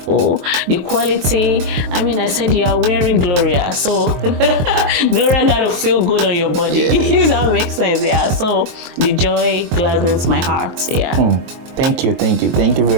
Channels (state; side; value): late; left; 23 ms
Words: the quality. I mean, I said you are wearing Gloria, so Gloria gotta feel good on your body. If that makes sense. Yeah, so the joy gladdens my heart. Yeah. Thank you